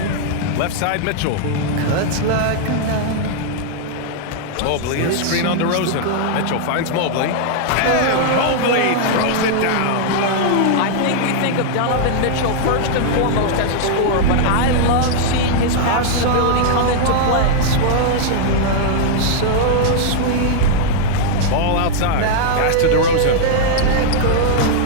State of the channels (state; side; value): different; both; correlation -0.01